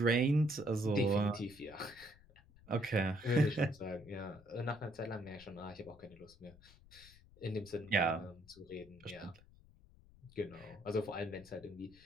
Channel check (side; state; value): left; noise; rumble, 24 dB below the sound